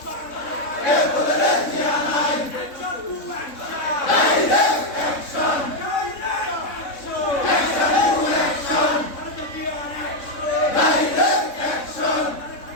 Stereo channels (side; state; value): right; late; 3.6 ms